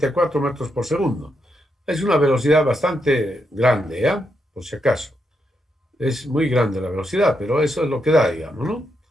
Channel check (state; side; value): normal; both; correlation 0.81